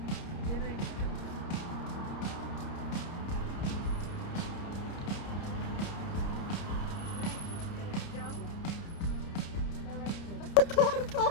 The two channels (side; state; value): right; late; 30 ms